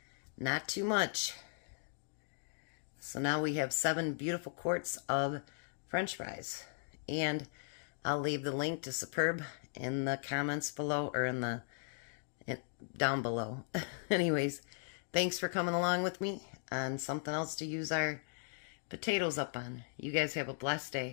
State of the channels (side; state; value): right; silent; digital silence